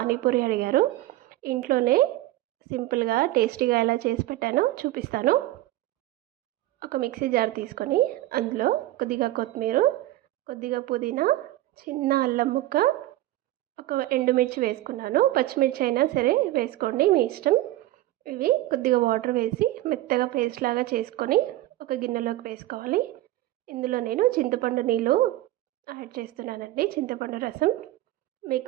అడిగారు. ఇంట్లోనే సింపుల్గా టేస్టీగా ఎలా చేసి పెట్టానో చూపిస్తాను. ఒక మిక్సీ జార్ తీసుకొని అందులో కొద్దిగా కొత్తిమీర, కొద్దిగా పుదీనా, చిన్న అల్లం ముక్క, ఒక ఎండుమిర్చి వేసుకున్నాను. పచ్చిమిర్చి అయినా సరే వేసుకోండి, మీ ఇష్టం. ఇవి కొద్దిగా వాటర్ వేసి మెత్తగా పేస్ట్ లాగా చేసుకొని ఒక గిన్నెలోకి వేసుకోవాలి. ఇందులో నేను చింతపండు నీళ్ళు యాడ్ చేస్తున్నానండి, చింతపండు రసం.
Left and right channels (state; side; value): quieter; left; 15.8 dB